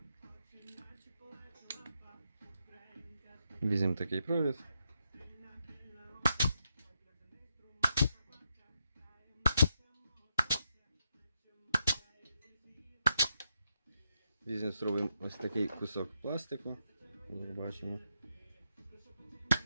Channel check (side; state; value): both; inverted; correlation -0.81